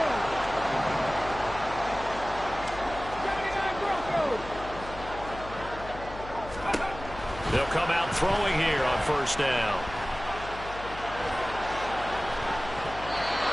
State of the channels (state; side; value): noise; left; hum, 13 dB below the sound